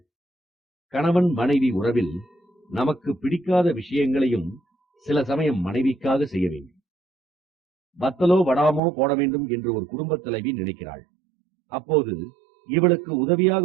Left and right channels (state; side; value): drops out; left; at 8.8 s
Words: கணவன் மனைவி உறவில் நமக்கு பிடிக்காத விஷயங்களையும் சில சமயம் மனைவிக்காக செய்ய வேண்டும். வத்தலோ வடாமோ போட வேண்டும் என்று ஒரு குடும்ப தலைவி நினைக்கிறாள். அப்போது இவளுக்கு உதவியாக